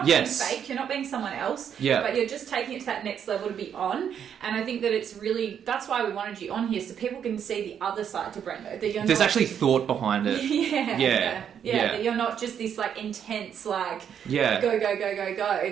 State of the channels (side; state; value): left; quieter; 8.4 dB